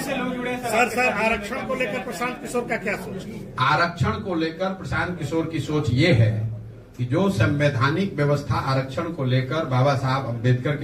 आरक्षण को लेकर प्रशांत किशोर का क्या सोच? आरक्षण को लेकर प्रशांत किशोर की सोच ये है कि जो संवैधानिक व्यवस्था आरक्षण को लेकर बाबा साहब अम्बेडकर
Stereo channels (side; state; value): both; identical; correlation 1.00